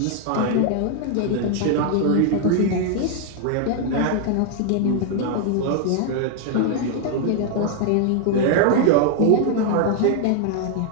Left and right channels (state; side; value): different; both; correlation 0.00